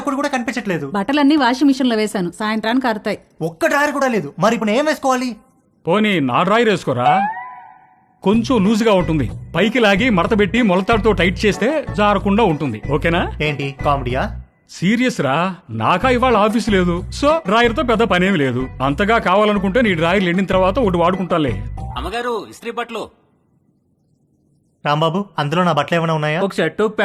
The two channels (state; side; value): identical; both; correlation 1.00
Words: కూడా కనిపించట్లేదు. బట్టలన్నీ వాషింగ్ మిషన్ లో వేశాను, సాయంత్రానికి ఆరుతాయి. ఒక్క డ్రాయర్ కూడా లేదు. మరి ఇప్పుడు ఏం వేసుకోవాలి? పోనీ నా డ్రాయర్ వేసుకోరా, కొంచెం లూజ్గా ఉంటుంది. పైకి లాగి మడతబెట్టి మొలతాడుతో టైట్ చేస్తే జారకుండా ఉంటుంది. ఓకేనా? ఏంటి కామెడీయా? సీరియస్ రా, నాకా ఇవాళ ఆఫీస్ లేదు, సో డ్రాయర్తో పెద్ద పనేమి లేదు. అంతగా కావాలనుకుంటే నీ డ్రాయర్ ఎండిన తర్వాత ఒకటి వాడుకుంటాలే. అమ్మగారు ఇస్త్రీ బట్టలు. రాంబాబు, అందులో నా బట్టలు ఏమైనా ఉన్నాయా? ఒక షర్ట్ ఒక